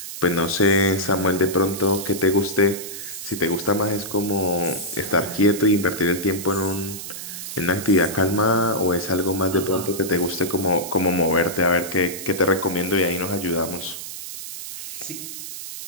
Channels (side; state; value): right; noise; hiss, 9 dB below the sound